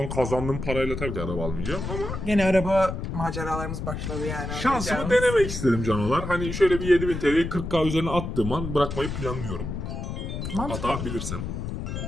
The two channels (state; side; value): noise; left; rumble, 5 dB below the sound